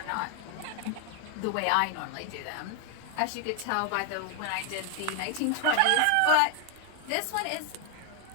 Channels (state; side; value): different; both; correlation 0.01